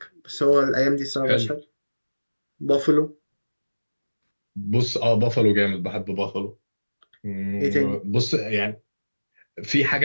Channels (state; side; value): inverted; both; correlation -1.00